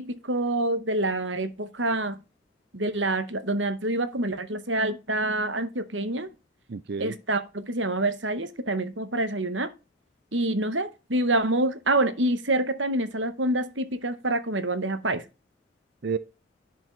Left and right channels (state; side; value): normal; both; correlation -0.03